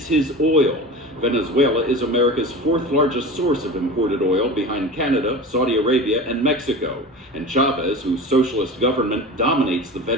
his oil. Venezuela is America's 4th largest source of imported oil behind Canada, Saudi Arabia, and Mexico. And Chavez, whose socialist government dominates the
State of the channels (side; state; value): both; normal; correlation 0.33